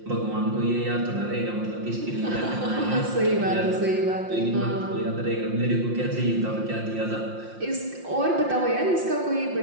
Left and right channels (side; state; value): left; late; 5.7 ms